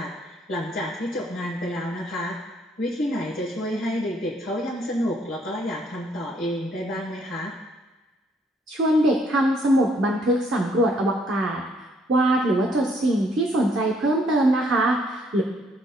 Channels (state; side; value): normal; both; correlation 0.68